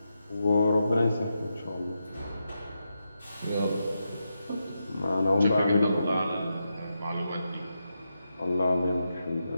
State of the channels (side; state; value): both; inverted; correlation -0.86